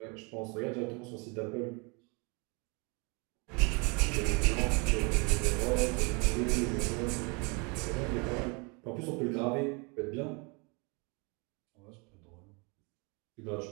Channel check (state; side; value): quieter; left; 31.0 dB